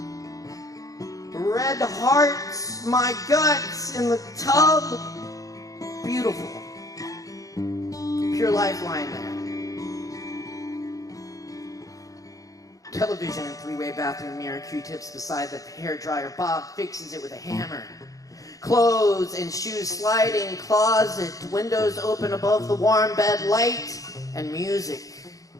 Red hearts, my guts in the tub. Beautiful. Pure lifeline there. Television and three-way bathroom mirror, Q-tips beside the hairdryer. Bob fixes it with a hammer. Clothes and shoes sliding, closet, windows open above the warm bed, light and music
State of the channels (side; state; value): right; late; 0.17 ms